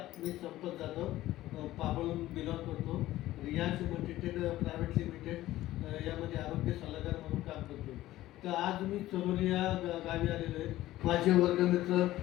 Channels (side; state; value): right; quieter; 15.5 dB